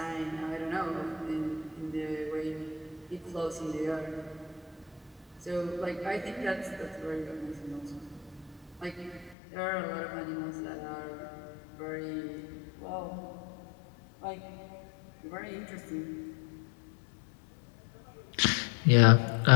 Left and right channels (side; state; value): right; drops out; at 9.3 s